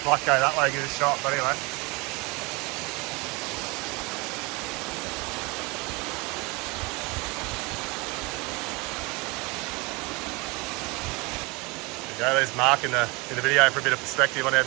Might go that way, give it a shot, but anyway. There you go, there's Mark in the video for a bit of perspective on how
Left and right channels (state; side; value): quieter; left; 26.5 dB